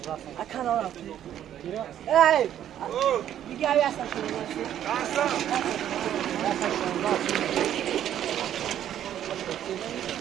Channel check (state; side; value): quieter; left; 10.8 dB